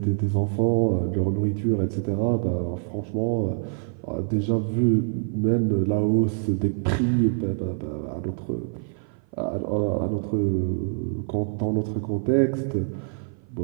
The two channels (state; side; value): silent; left; 56 dB below the other